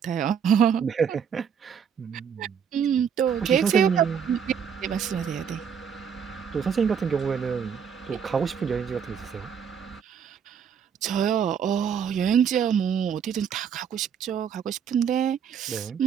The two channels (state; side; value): quieter; left; 7.5 dB